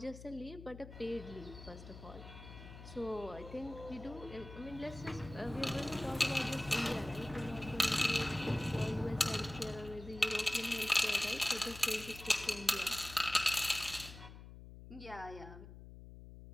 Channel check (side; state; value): left; noise; hum, 14 dB below the sound